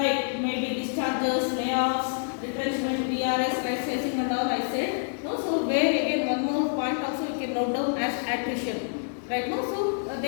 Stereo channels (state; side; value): silent; right; digital silence